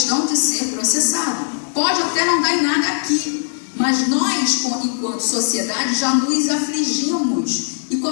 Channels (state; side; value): silent; right; digital silence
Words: de ser processado. Pode até não dar em nada aqui, mas nós, enquanto sociedade, já nos afligimos e